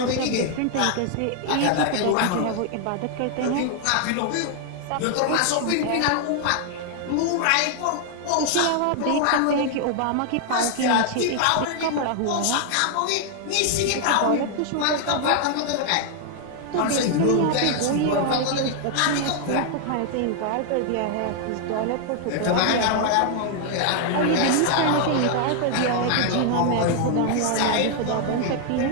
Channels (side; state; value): both; different; correlation 0.00